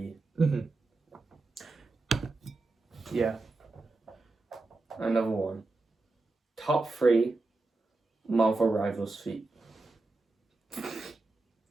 Yeah. Another one. Top 3 Marvel Rivals feat.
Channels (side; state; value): left; quieter; 3.4 dB